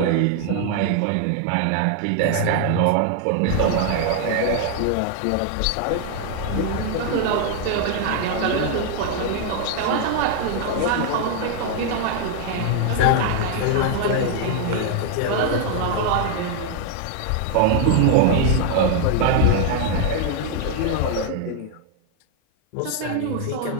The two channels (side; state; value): both; different; correlation 0.00